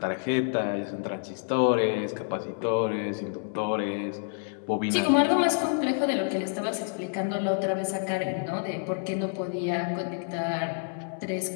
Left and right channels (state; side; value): silent; right; 59 dB below the other